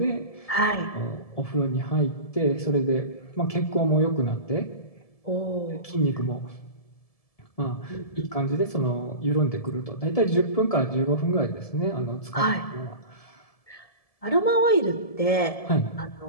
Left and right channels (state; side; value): late; right; 1.7 ms